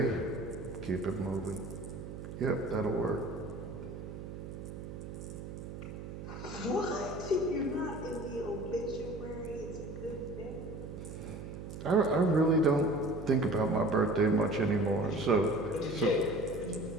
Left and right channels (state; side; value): noise; right; hum, 9 dB below the sound